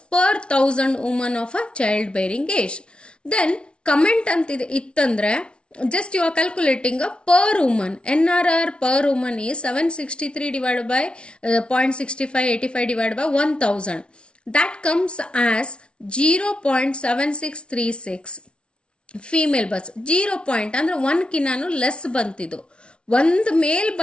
per 1000 women of a child bearing age. Then comment ಅಂತಿದೆ ಇತ್ತಂದ್ರೆ just you are calculating a per woman. NRR per woman is 763 divided by 0.6585 divided by 1000. That comes as 0.7636 female berths. 0 point ಅಂದರೆ 1ಕಿನ್ನಾನು less ಬಂತಿದ್ದು, ಒಂದು ಮೇಲ್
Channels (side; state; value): right; late; 0.058 ms